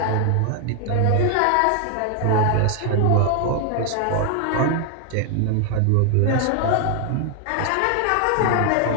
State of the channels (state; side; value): different; both; correlation 0.00